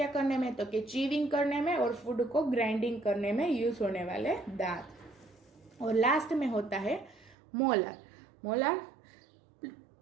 करने में, तो कि चीविंग करने में और फूड को ग्राइंडिंग करने में यूज होने वाले दांत। और लास्ट में होता है मोलर। मोलर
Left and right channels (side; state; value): left; drops out; at 7.4 s